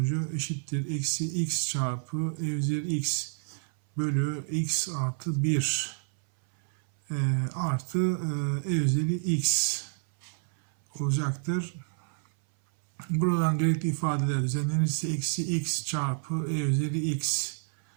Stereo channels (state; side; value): silent; left; 59 dB below the other